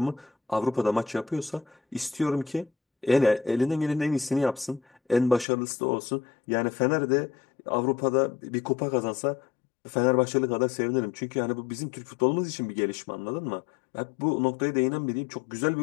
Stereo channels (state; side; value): drops out; right; at 5.5 s